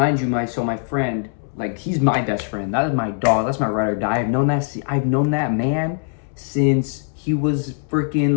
you, my friend, like he's my best friend. That is my dog. That's my ride or die. I've known that man since he was freaking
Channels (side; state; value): right; silent; 65 dB below the other